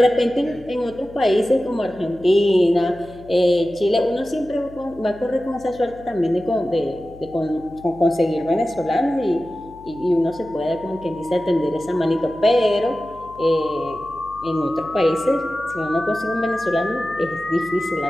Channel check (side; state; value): left; noise; hum, 21 dB below the sound